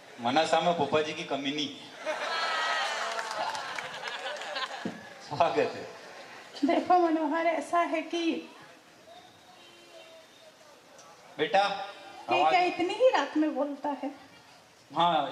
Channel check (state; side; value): identical; both; correlation 1.00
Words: मनासा में पोपा जी की कमी नहीं। स्वागत है। देखो मनोहर, ऐसा है कि बेटा ये क्या इतनी ही रात में बोलता है?